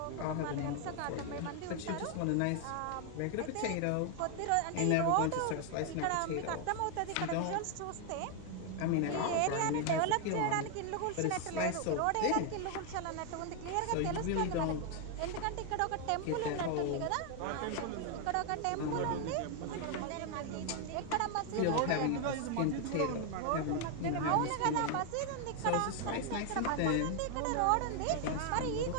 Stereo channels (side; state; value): both; different; correlation 0.00